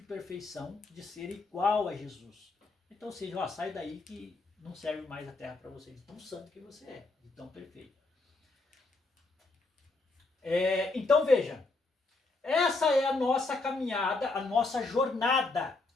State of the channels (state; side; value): quieter; right; 3.4 dB